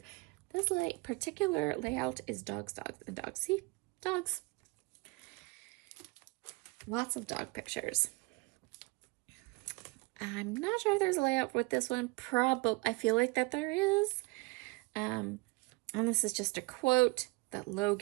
This particular layout is dogs, dogs, and dogs. See? Dogs. lots of dog pictures. I'm not sure if there's a layout with this one. I feel like that there is. And this is just a quote that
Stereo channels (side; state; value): left; quieter; 25.8 dB